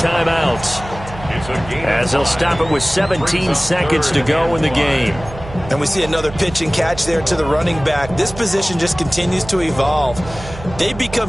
as they'll stop it with 17 seconds to go in the game. And we see another pitch and catch there to the running back. This position just continues to evolve. They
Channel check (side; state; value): right; noise; hum, 14 dB below the sound